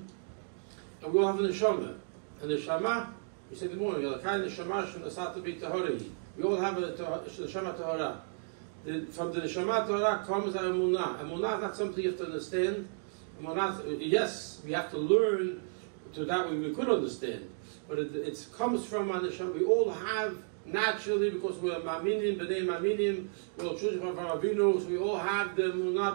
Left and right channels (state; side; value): silent; left; digital silence